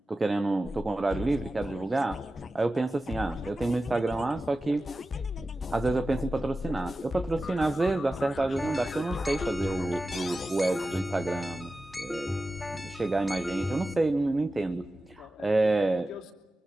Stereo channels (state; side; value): normal; both; correlation 0.94